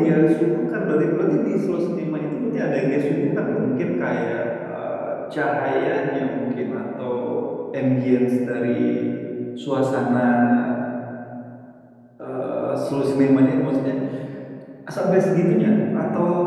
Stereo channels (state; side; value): identical; both; correlation 1.00